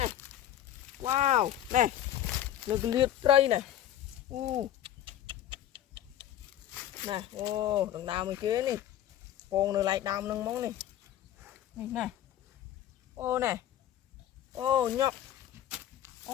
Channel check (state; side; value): quieter; right; 11.7 dB